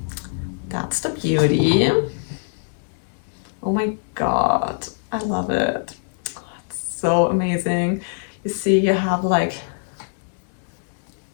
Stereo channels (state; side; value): silent; right; digital silence